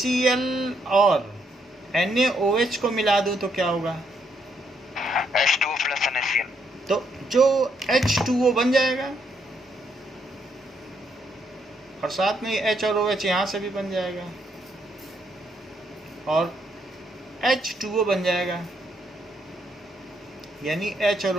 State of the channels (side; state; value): both; normal; correlation 0.75